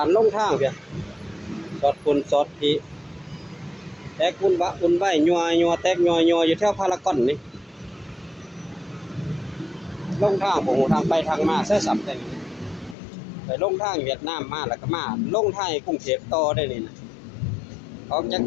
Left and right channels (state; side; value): drops out; right; at 13.0 s